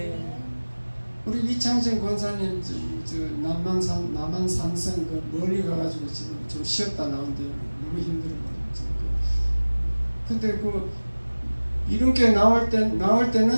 우리 이창진 권사님 남한산성 그 멀리 가가지고 지금 좀 쉬었다 나온대요. 너무 힘들어가지고. 근데 그 이름교회 나올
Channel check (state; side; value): inverted; both; correlation -1.00